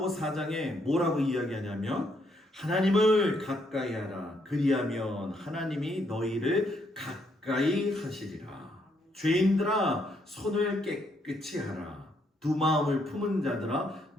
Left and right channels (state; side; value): normal; both; correlation 0.73